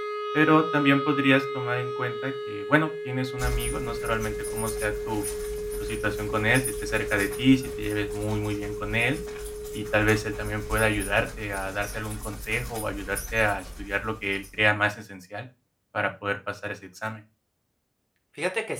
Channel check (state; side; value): identical; both; correlation 1.00